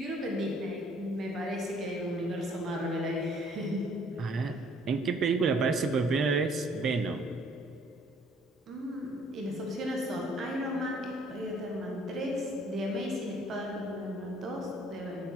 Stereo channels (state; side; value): normal; both; correlation 0.60